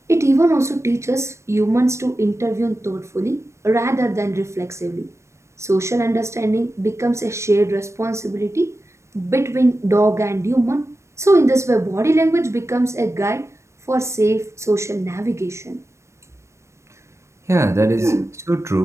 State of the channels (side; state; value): left; late; 0.13 ms